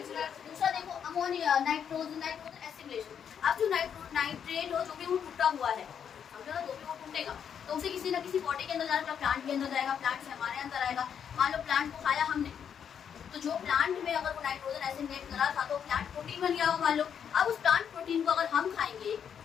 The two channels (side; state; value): right; quieter; 8.0 dB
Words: दूसरा देखो अमोनिया, नाइट्रोजन एसिमिलेशन। अब जो नाइट्रेट हो जो भी वो टूटा हुआ है, समझो ना, जो भी वो टूटेगा तो उसे किसी ना किसी पॉटी के अंदर जाएगा, प्लांट के अंदर जाएगा, प्लांट से हमारे अंदर आएगा। मान लो प्लांट को खाया हमने, तो जो प्लांट में अगर वो नाइट्रोजन एसिमिलेट करा था तो प्लांट प्रोटीन बन गया हो मान लो। अब उस प्लांट प्रोटीन को अगर हम खाएंगे,